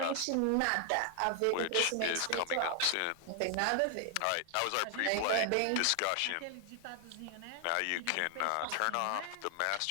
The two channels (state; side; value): different; both; correlation 0.00